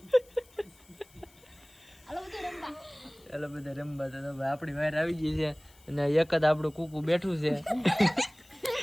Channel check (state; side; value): noise; left; hiss, 27 dB below the sound